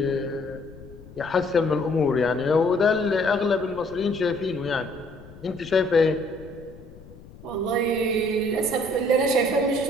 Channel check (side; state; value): left; noise; rumble, 19 dB below the sound